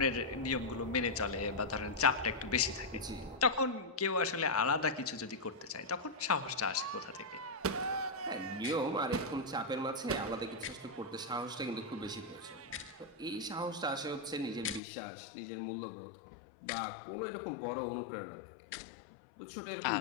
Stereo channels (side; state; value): right; drops out; at 14.8 s